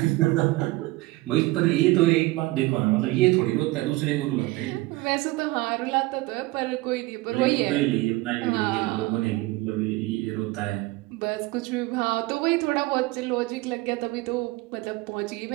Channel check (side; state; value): left; quieter; 20.4 dB